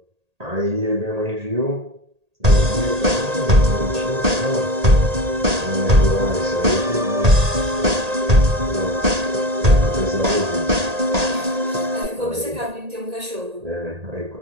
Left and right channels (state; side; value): late; left; 1.8 ms